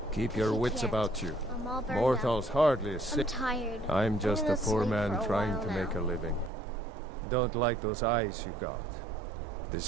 Keep your wits about you. I'm all burned Mortals hardly sick. I'm tired. I'm just a gonna poor sleep man for a trying while to now. make a living. Don't like those eyes you got.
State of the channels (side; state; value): left; drops out; at 6.5 s